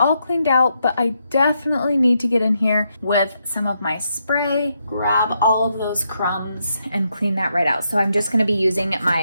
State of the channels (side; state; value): both; inverted; correlation -0.80